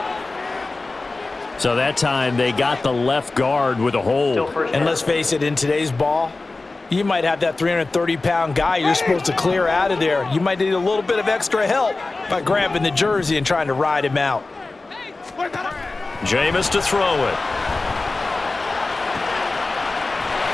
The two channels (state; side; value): quieter; right; 3.4 dB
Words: So that time they got the left guard with a hold. And let's face it, in today's ball, you might have that 330-pound guy you're supposed to clear out of there. You might need a little bit of extra help by grabbing the jersey and trying to ride him out. Jameis to throw it.